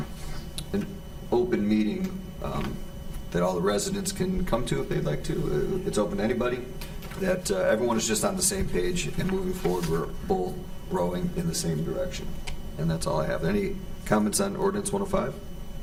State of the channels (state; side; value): identical; both; correlation 1.00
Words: open meeting that all the residents can come to if they'd like to. It's open to anybody, that everyone is just on the same page and moving forward. We're both rowing in the same direction. And that's all I have. Any comments on ordinance 105?